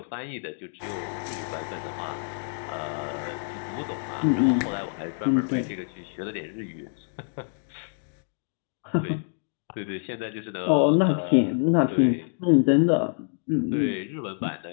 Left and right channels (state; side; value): silent; right; digital silence